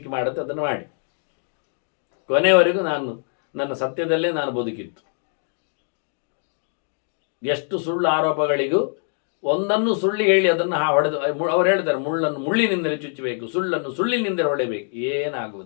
ಮಾಡುತ್ತೆ ಅದನ್ನು ಮಾಡಿ. ಕೊನೆಯವರೆಗೂ ನನ್ನ ಸತ್ಯದಲ್ಲೇ ನಾನು ಬದುಕಿತ್ತು. ಎಷ್ಟು ಸುಳ್ಳು ಆರೋಪಗಳಿಗೂ ಒಂದನ್ನು ಸುಳ್ಳು ಹೇಳಿ ಅದನ್ನು ಹೊಡೆದು, ಅವ್ರು ಹೇಳ್ತಾರೆ, ಮುಳ್ಳಿನಿಂದಲೇ ಚುಚ್ಚಬೇಕು, ಸುಳ್ಳನ್ನು ಸುಳ್ಳಿನಿಂದಲೇ ಹೊಡೆಯಬೇಕು.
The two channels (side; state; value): right; silent; 60 dB below the other